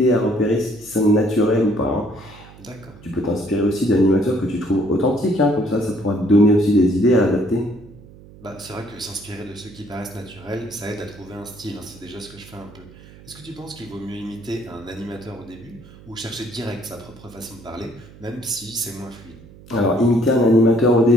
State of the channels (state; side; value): noise; right; hum, 21 dB below the sound